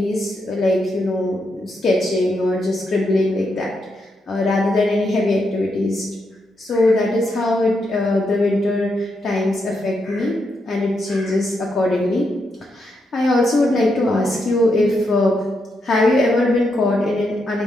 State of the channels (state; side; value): normal; both; correlation 0.82